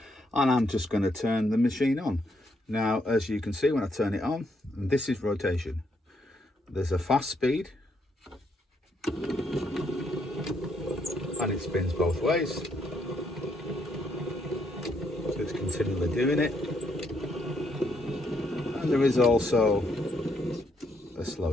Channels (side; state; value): both; normal; correlation 0.75